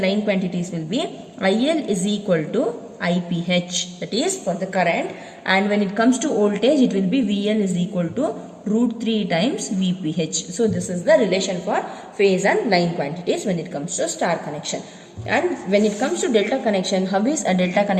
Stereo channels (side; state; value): both; identical; correlation 1.00